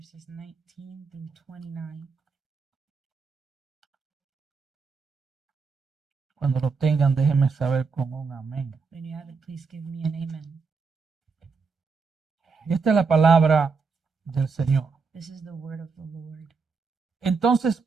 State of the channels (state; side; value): quieter; left; 4.9 dB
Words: 19 through 29. Cuando lo tengan, déjenme saber con un amén. When you have it, please give me an amen. Y esta es la palabra del Señor. This is the word of the Lord. Entonces,